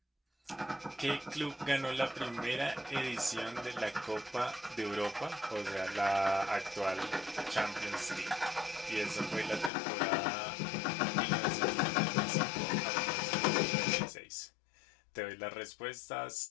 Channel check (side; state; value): right; drops out; at 9.7 s